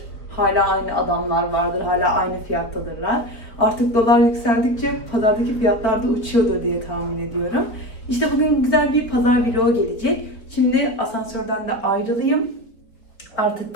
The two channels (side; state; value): right; late; 4.3 ms